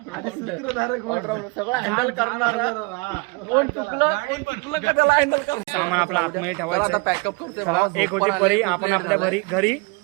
ऑलराऊंडर, सगळं हँडल करणारा. कोण चुकलं का त्याला हँडल कर. सामान आपलं आतमध्ये ठेवायचं आता आहे. पॅकअप करते. चला, एक होती परी, आपण आपल्या घरी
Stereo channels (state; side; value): quieter; left; 29.2 dB